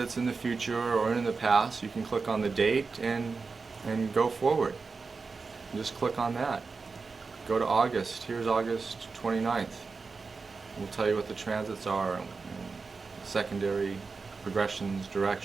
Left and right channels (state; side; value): quieter; left; 4.5 dB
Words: in the future or in the past, you can click on the date and go forward. Just click on that. Go to August. Here's August 29th. We'll tell you what the transits are, and secondary progressions,